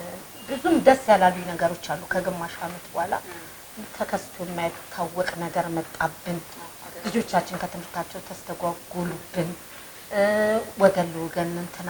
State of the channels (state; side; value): identical; both; correlation 1.00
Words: ብዙም ደስ ያላሉኝ ነገሮች አሉ። ከግማሽ አመት በኋላ ተከስቶ የማይታወቅ ነገር መጣብን። ልጆቻችን ከትምህርታቸው ተስተጓጉሉብን፣ ወገን ለወገን እንትን